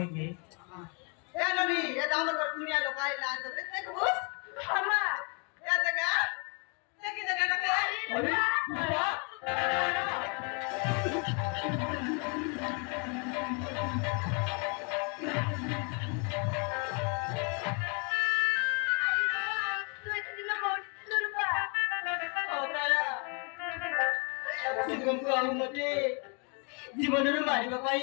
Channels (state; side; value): quieter; right; 35.8 dB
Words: के ए ननी ये दामर कर दुनिया लोग आए लाज रे देख बस हमा या जगह देखी जगह का अरे तुमको मते जीवन रे मारी